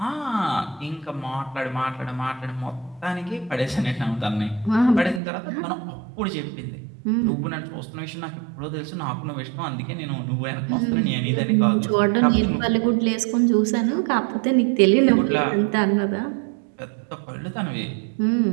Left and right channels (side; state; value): left; drops out; at 5.2 s